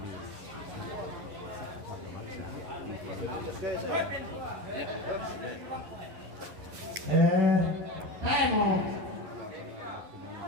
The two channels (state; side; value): late; left; 10 ms